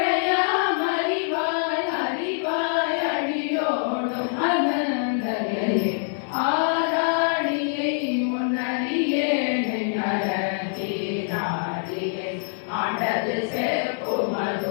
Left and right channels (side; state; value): right; silent; digital silence